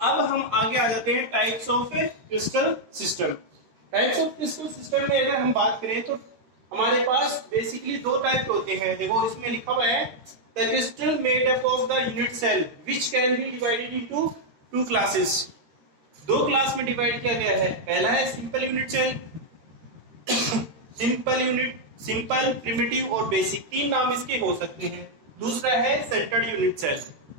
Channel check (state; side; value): late; left; 13 ms